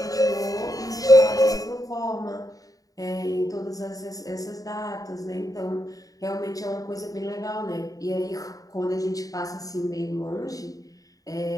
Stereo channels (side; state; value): right; late; 0.17 ms